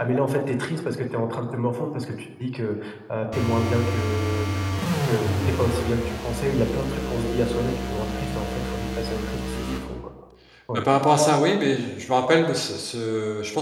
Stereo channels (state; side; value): identical; both; correlation 1.00